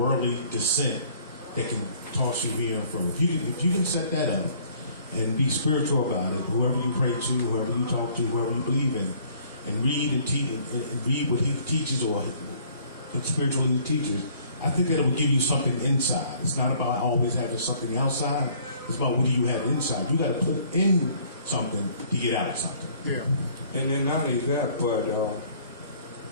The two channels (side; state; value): both; inverted; correlation -0.57